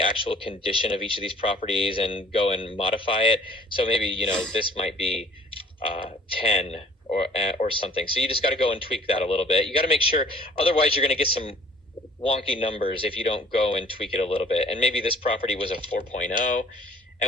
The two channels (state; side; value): normal; both; correlation 0.53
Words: actual condition of each of these properties and go and modify it. So maybe, you know, this might be 10 or something. So you just got to go and tweak that a little bit. You got to make sure, otherwise you're going to get some wonky numbers if you don't go and tweak it a little bit. And maybe this property was a 4.0.